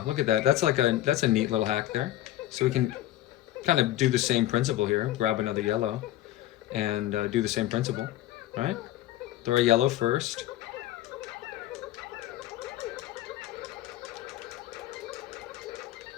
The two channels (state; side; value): quieter; right; 14.1 dB